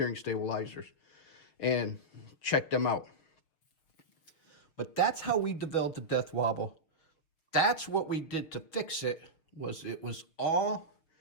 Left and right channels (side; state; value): right; late; 6.5 ms